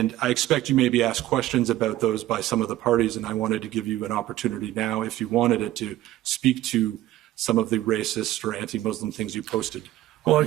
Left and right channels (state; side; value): quieter; left; 14.8 dB